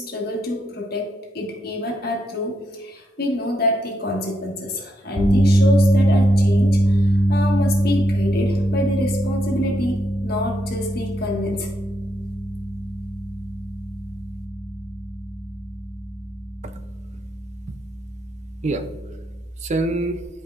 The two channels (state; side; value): normal; both; correlation 0.79